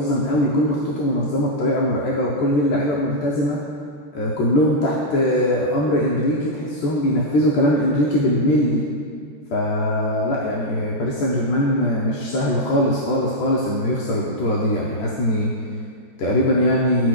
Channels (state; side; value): late; right; 13 ms